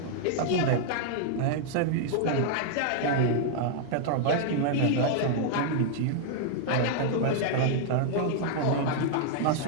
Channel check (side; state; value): both; different; correlation -0.01